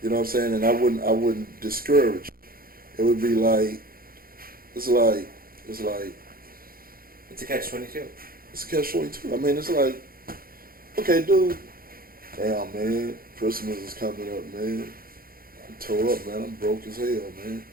You know what I'm saying? And I wouldn't discourage it. It would be like, it's like, it's like, It's a catch-22. it's a catch-22. I mean, it's like, okay, dude, damn, man, Christmas is coming up, man. I'm tore up, man. I'm broke as hell, man.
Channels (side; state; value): left; late; 0.42 ms